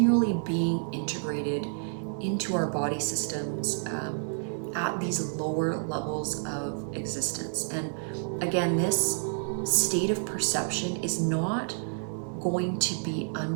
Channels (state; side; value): silent; left; digital silence